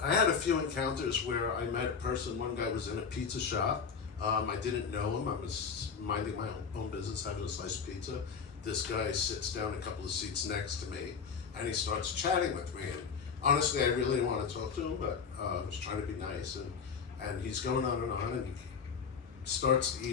I had a few encounters where I met a person. One guy was in a pizza shop. I didn't know him. I was minding my own business, having a slice of pizza. This guy sits down a couple of seats next to me, and he starts chatting with me. And honestly, I really didn't want to talk to him, but I was trying to be nice. And he's going on, and he starts to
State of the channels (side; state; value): right; quieter; 6.1 dB